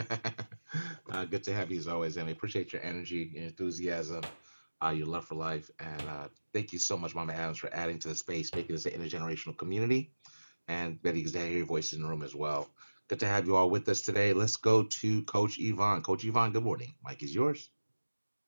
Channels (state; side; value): inverted; both; correlation -1.00